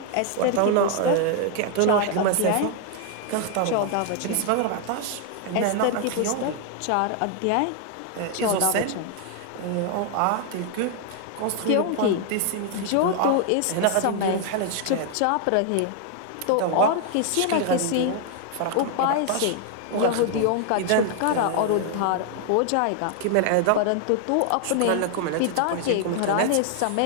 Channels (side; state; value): both; different; correlation 0.00